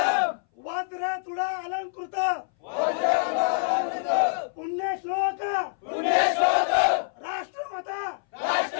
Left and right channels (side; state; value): right; silent; 59 dB below the other